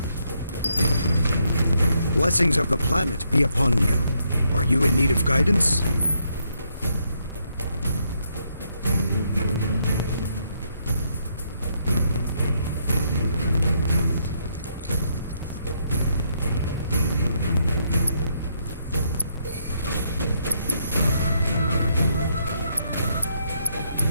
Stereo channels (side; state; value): both; inverted; correlation -0.75